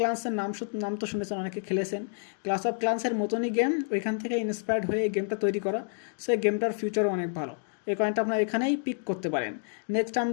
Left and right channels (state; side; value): silent; right; 59 dB below the other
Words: নাম তো শুনেছেন, অনেকে খেলেছেন। ক্লাস অফ ক্লান্সের মতনই গেম, ওইখান থেকে ইন্সপায়ার্ড হয়ে এই গেমটা তৈরি করা। সো এই গেমটার ফিউচারও অনেক ভালো, এই কয়েনটা আপনার এখানেই পিক করতে পারেন। নেক্সট